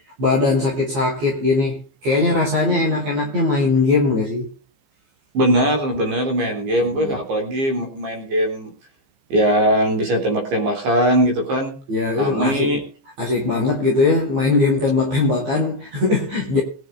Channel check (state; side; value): late; left; 15 ms